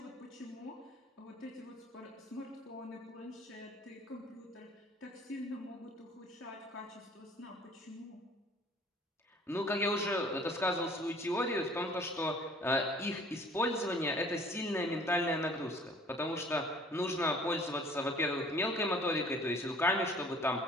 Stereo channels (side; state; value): both; normal; correlation 0.53